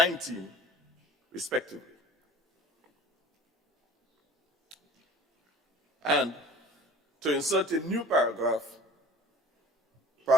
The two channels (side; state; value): both; normal; correlation 0.45